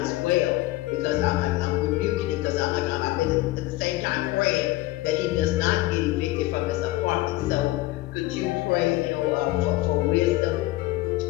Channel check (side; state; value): right; quieter; 18.1 dB